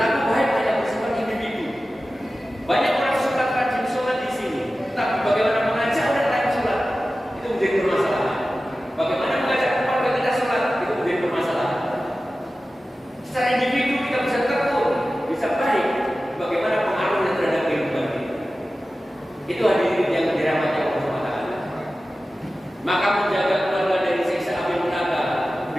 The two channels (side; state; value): both; normal; correlation 0.95